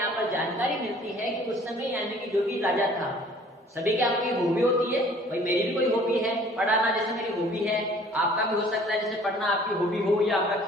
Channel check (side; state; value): both; normal; correlation 0.53